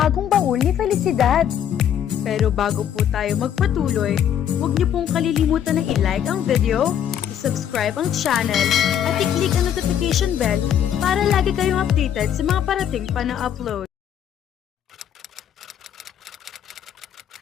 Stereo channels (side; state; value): right; quieter; 9.6 dB